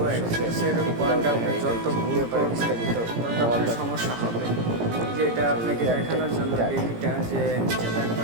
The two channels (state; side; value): late; left; 17 ms